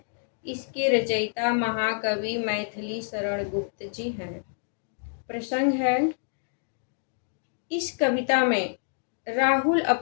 इसके रचयिता महाकवि मैथिली शरण गुप्त जी हैं। प्रसंग है: इस कविता में राहुल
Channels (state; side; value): silent; right; digital silence